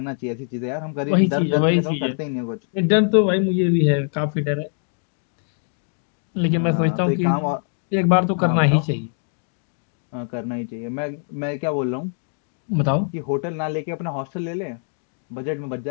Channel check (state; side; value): silent; right; 57 dB below the other